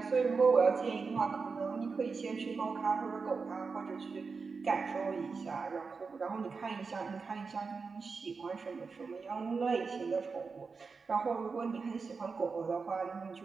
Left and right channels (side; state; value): left; quieter; 4.8 dB